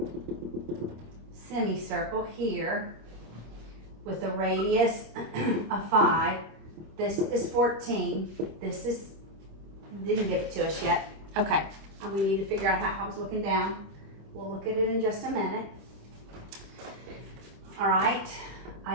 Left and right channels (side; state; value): left; late; 25 ms